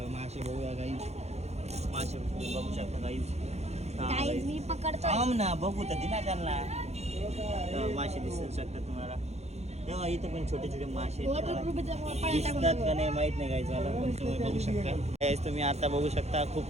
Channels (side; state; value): left; late; 0.31 ms